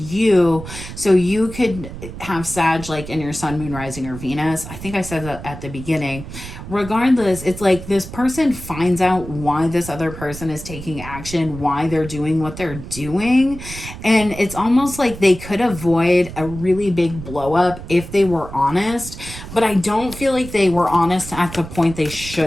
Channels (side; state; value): right; noise; rumble, 12 dB below the sound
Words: So you could have Sag like in your Sun, Moon, Rising, or Venus. I think I said that at the beginning. Regardless, it's like this person finds out why this other person is taking action, why they're doing what they're doing. And it's almost like they could avoid a really big blow up if they were honest. But I don't feel like they were honest at the point they